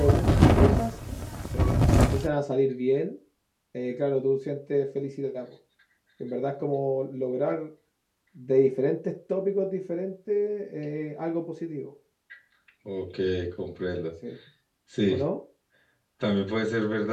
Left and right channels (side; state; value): both; identical; correlation 1.00